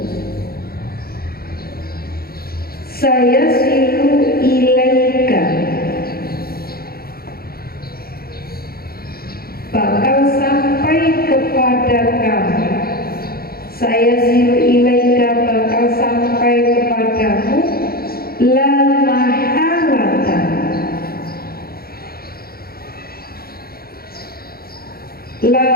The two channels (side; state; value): right; late; 0.44 ms